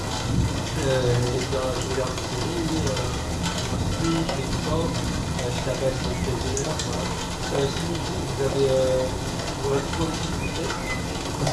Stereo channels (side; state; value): both; identical; correlation 1.00